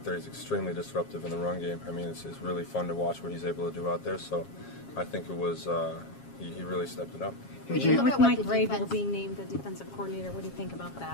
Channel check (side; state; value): right; late; 7.4 ms